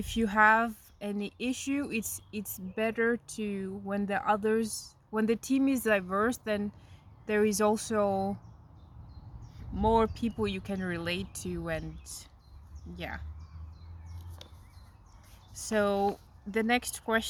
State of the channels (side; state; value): both; identical; correlation 1.00